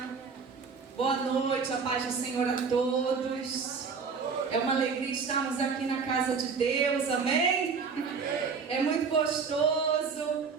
Boa noite, a paz do Senhor a todos. É uma alegria estarmos aqui na casa de Deus, amém? É muito gostoso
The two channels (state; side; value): quieter; left; 5.4 dB